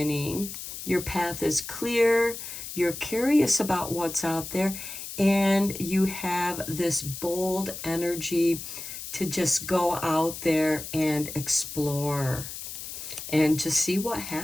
Your path is clear, you're curious about what's out there, and you have this bold energy to just go out there and explore and just see what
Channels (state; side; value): noise; left; hiss, 9 dB below the sound